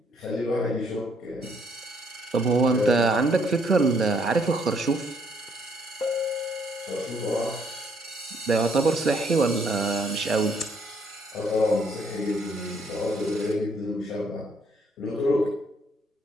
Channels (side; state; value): both; normal; correlation 0.68